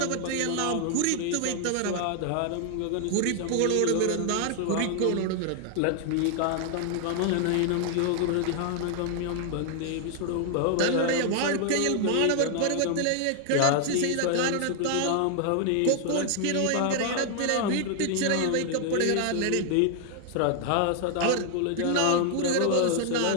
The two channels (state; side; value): different; both; correlation 0.00